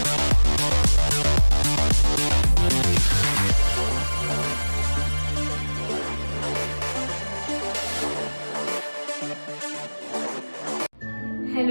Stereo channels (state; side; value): inverted; both; correlation -1.00